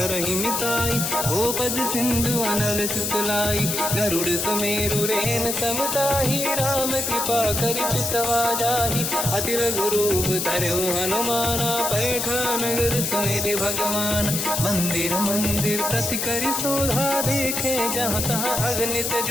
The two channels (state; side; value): noise; left; hiss, 1 dB below the sound